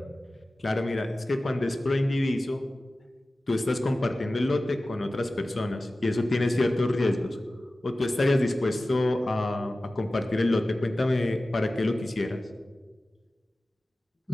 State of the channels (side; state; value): both; normal; correlation 0.96